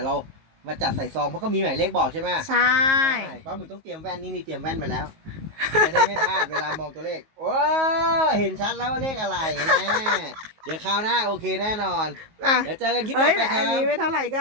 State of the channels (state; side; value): late; left; 19 ms